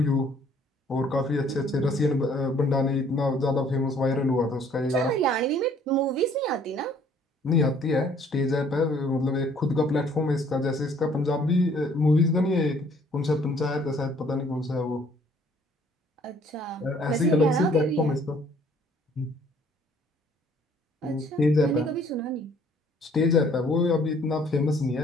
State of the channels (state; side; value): normal; both; correlation 0.60